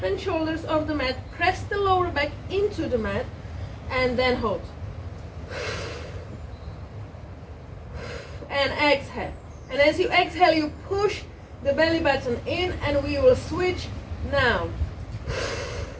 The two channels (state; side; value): identical; both; correlation 1.00